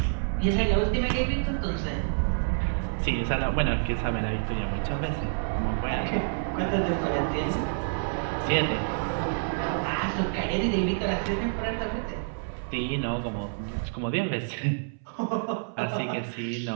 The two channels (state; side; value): silent; left; 59 dB below the other